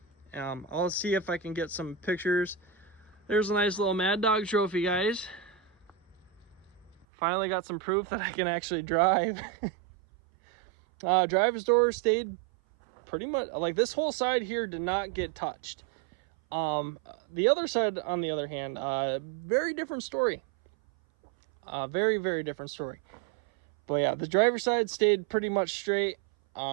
I'll see if I can get some pictures. There's a nice little Mad Dog trophy, guys. Finally got some proof that I can actually drive. Driver's door stayed pretty much, like this whole side here did not get touched. The other side, on the other hand, very different story. Very, very different story. But yeah, the driver's side stayed pretty much straight.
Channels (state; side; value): drops out; left; at 7.1 s